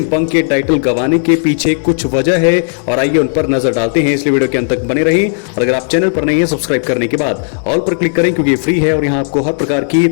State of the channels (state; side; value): silent; right; digital silence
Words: पंक के टाइटल गंवाने के पीछे कुछ वजह है और आइए उन पर नजर डालते हैं, इसलिए वीडियो के अंत तक बने रहें। और अगर आप चैनल पर नहीं है, सब्सक्राइब करने के बाद ऑल पर क्लिक करें, क्योंकि ये फ्री है और यहाँ आपको हर प्रकार की